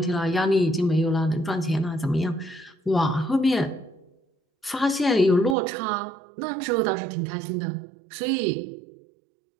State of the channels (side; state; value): left; drops out; at 5.6 s